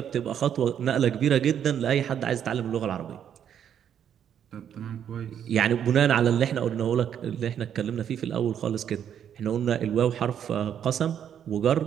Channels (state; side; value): quieter; left; 9.1 dB